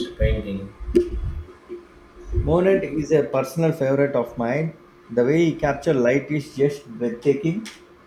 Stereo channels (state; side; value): identical; both; correlation 1.00